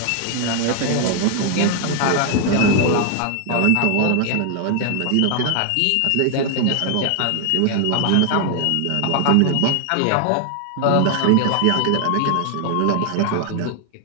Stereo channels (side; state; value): both; different; correlation 0.00